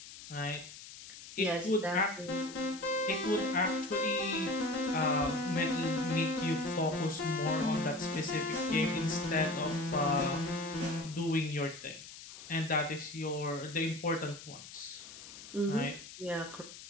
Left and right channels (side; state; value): left; noise; hiss, 15 dB below the sound